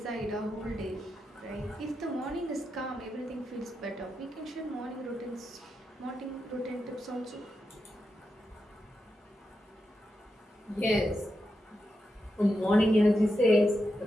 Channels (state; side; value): normal; both; correlation 0.87